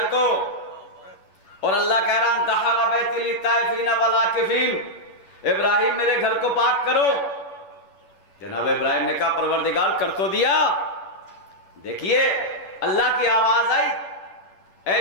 کو، اور اللہ کہہ رہا انطہر بیتی للطائفین والعاکفین، ابراہیم میرے گھر کو پاک کرو۔ جناب ابراہیم نے کہا پروردگار کر تو دیا۔ دیکھیے اللہ کی آواز آئی،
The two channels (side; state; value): right; late; 11 ms